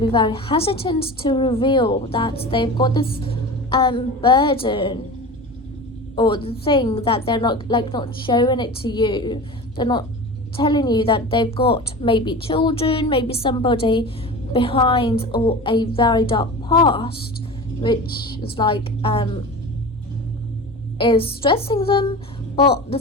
very hesitant to reveal that they've got this burden, or the thing that they're not showing it to you. They're not telling you that they've got maybe children, maybe somebody behind, or a very dark past, which is is stressing them. But the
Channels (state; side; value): normal; both; correlation 0.32